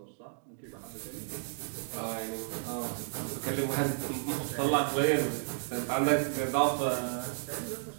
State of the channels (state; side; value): silent; left; digital silence